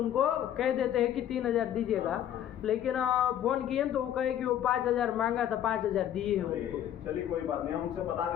कह देते हैं कि 3000 दीजिएगा, लेकिन फोन किए तो वो कहे कि वो 5000 मांगा था, 5000 दिए हैं उनको। चलिए कोई बात नहीं, हम उनसे बता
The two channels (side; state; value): right; quieter; 10.8 dB